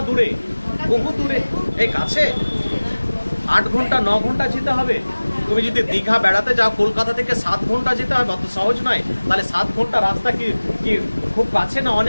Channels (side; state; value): both; inverted; correlation -1.00